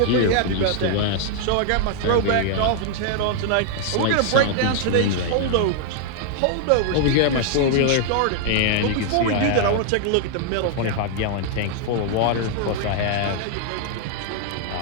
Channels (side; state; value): both; different; correlation 0.00